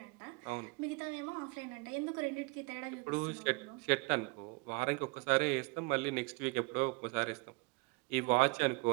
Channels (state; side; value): quieter; left; 28.4 dB